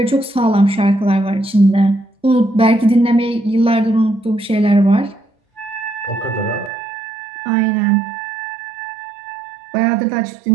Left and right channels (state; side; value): drops out; left; at 6.7 s